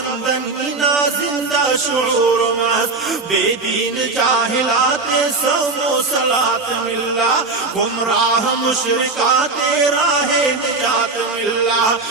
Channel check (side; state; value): left; quieter; 3.7 dB